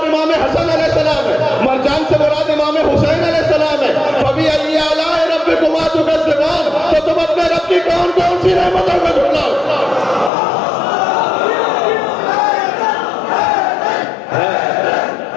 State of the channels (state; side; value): drops out; right; at 10.3 s